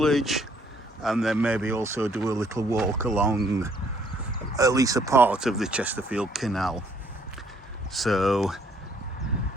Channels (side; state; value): both; normal; correlation 0.65